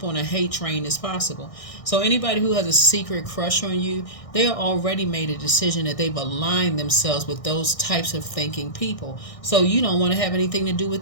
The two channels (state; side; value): late; right; 1.6 ms